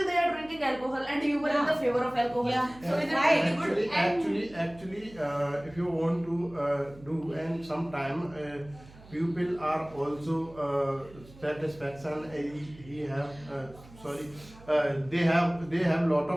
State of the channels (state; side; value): noise; right; hum, 21 dB below the sound